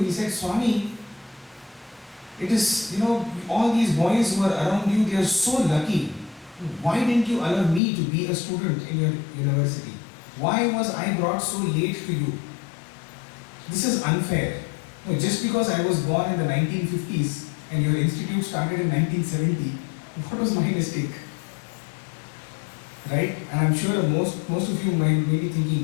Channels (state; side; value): drops out; right; at 7.8 s